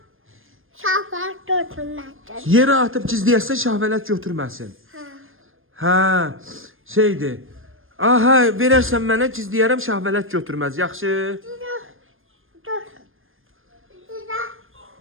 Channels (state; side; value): late; left; 0.59 ms